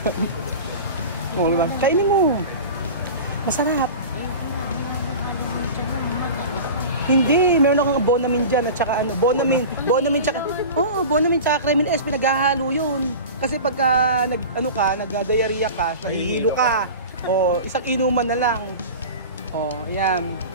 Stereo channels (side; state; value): both; inverted; correlation -0.33